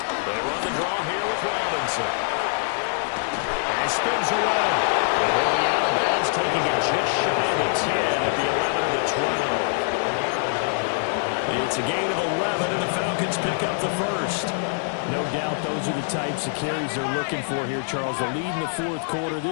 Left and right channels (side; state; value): right; silent; digital silence